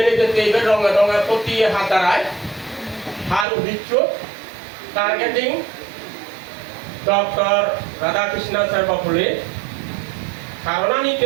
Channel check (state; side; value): drops out; left; at 3.5 s